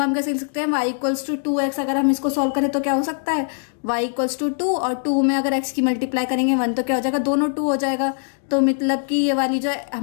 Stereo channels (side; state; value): right; silent; digital silence